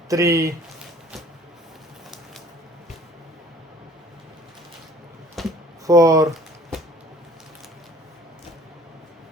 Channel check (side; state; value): both; normal; correlation 0.52